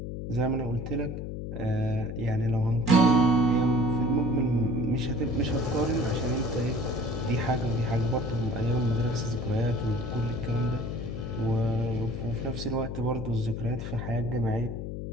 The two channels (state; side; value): noise; left; hum, 6 dB below the sound